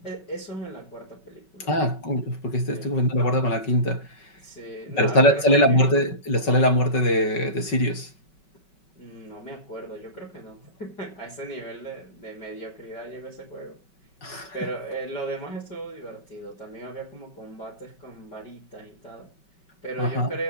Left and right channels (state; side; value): late; right; 5.4 ms